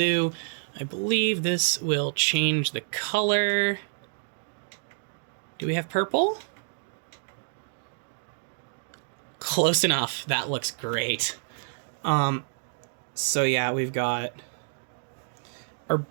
I believe this will change the color. Do we have purple? Close enough. That looks great. So yeah, we've got our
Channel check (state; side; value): silent; left; digital silence